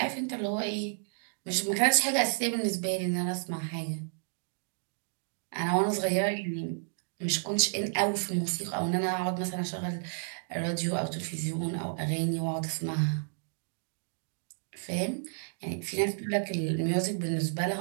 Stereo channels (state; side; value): silent; left; digital silence